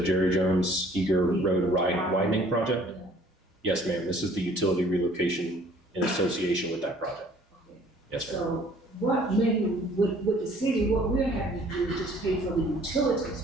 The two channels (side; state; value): both; normal; correlation 0.56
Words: Jerry Jones Eager Road widening project? Yes, ma'am. This is the utility relocation in association with that project. Okay. Yes, ma'am. So what maybe with the city, what we're having to do is just pay for the